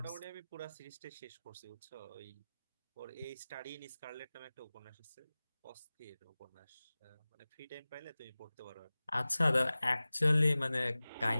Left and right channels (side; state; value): both; inverted; correlation -0.98